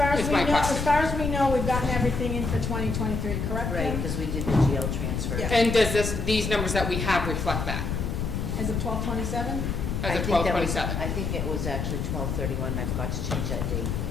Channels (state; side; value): noise; left; rumble, 2 dB below the sound